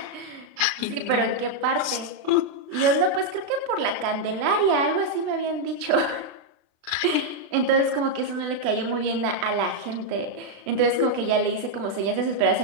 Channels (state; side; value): late; left; 36 ms